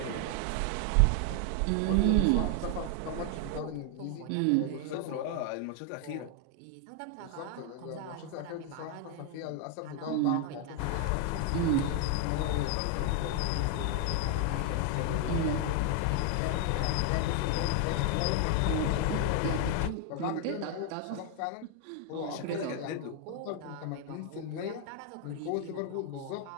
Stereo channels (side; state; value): both; different; correlation 0.00